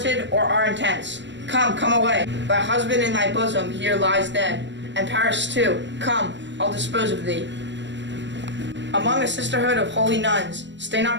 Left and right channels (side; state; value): left; late; 0.53 ms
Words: or our intents. Come, come away. Thy husband in thy bosom here lies dead, and Paris too. Come, I'll dispose of thee. Among a sisterhood of holy nuns, stay